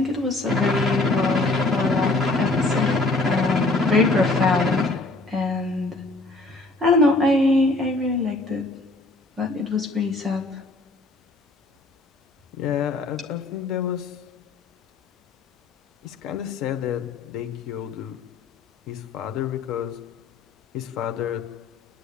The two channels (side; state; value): right; quieter; 3.2 dB